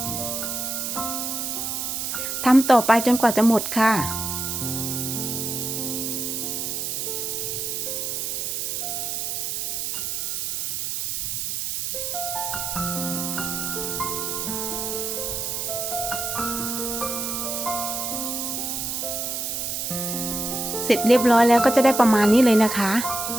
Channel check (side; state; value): right; noise; hiss, 2 dB below the sound